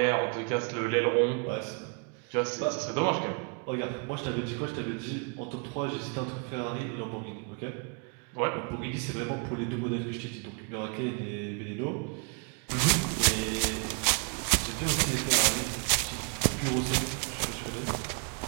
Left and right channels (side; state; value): left; quieter; 37.0 dB